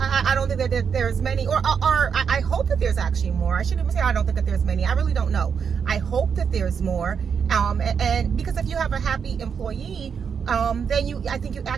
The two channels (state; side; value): quieter; left; 6.7 dB